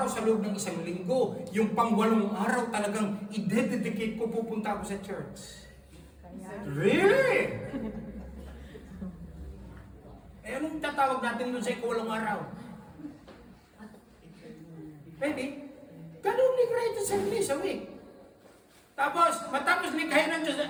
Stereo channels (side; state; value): both; identical; correlation 1.00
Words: sa loob ng isang linggo, yung pang 8 araw talagang i-dedicate ko, pupunta ako sa church. Really? Eh, anong tatawag natin doon sa ika-8 araw? Pwede? Ganun ni Christ 7 days a week. Tapos, matapos likhain ng Diyos,